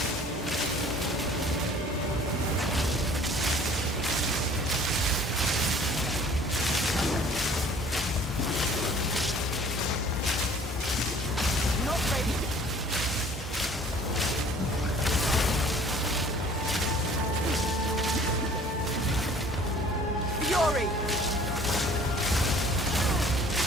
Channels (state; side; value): normal; both; correlation 0.52